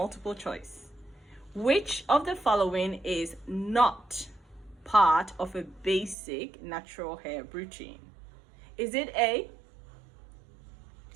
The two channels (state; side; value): drops out; left; at 6.2 s